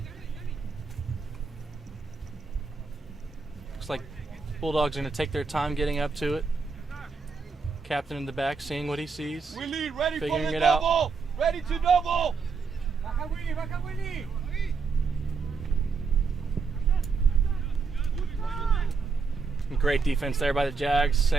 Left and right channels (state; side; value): quieter; left; 4.9 dB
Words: Looks like Bulldogs are going to take their time getting up to it. Captain in the back, seeing what he sees, Willie, ready figuring for the it double. out. Ready to double. Great defense there by the Jags,